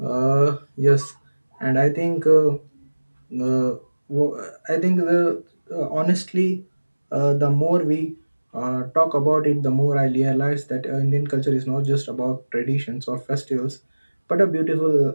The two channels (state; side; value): inverted; both; correlation -1.00